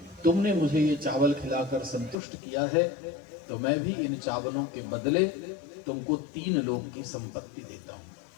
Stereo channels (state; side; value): drops out; right; at 2.1 s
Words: तुमने मुझे ये चावल खिलाकर संतुष्ट किया है, तो मैं भी इन चावलों के बदले तुमको 3 लोक की संपत्ति देता हूं।